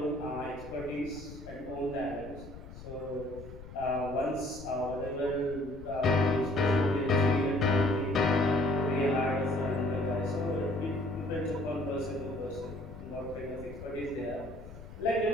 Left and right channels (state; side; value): noise; left; rumble, 15 dB below the sound